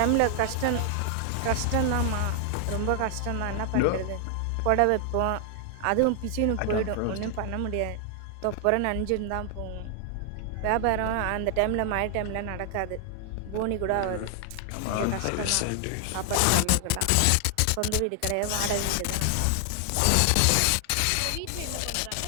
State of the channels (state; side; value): different; both; correlation 0.00